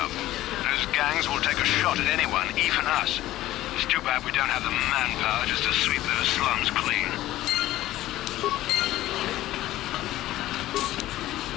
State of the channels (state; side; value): quieter; right; 15.2 dB